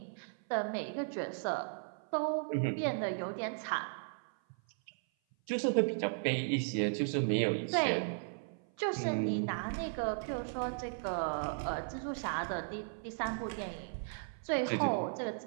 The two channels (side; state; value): left; silent; 54 dB below the other